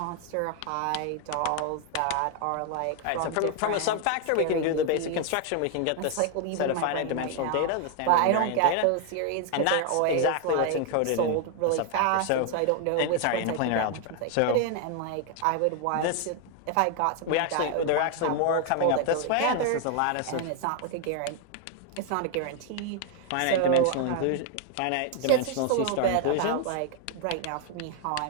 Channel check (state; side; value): different; both; correlation 0.00